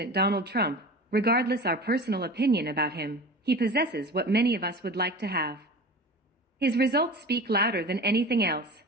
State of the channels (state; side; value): normal; both; correlation 0.35